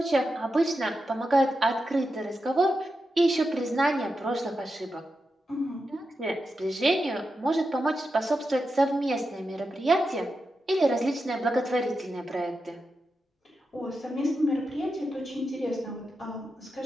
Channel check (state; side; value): normal; both; correlation 0.89